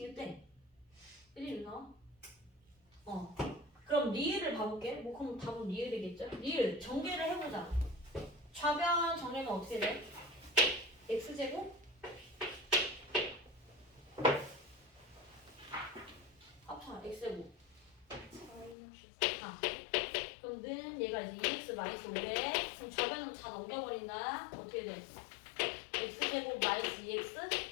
돼? 1이 나와? 그럼 리을을 봐볼게. 뭐 그럼 답은 리을이겠죠? 리을 전개를 해보자. 좌변 정리하면 어떻게 돼? x제곱 합쳐 x제곱 마이너스 4. 그럼 는 얘가 이제 2x 마이너스 5래. 그럼 좌변은 다 넘겨버린다. 어떻게 돼? x제곱 마이너스 2x?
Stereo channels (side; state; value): right; drops out; at 18.8 s